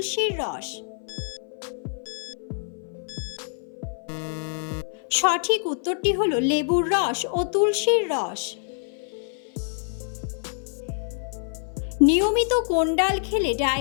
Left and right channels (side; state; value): right; silent; 57 dB below the other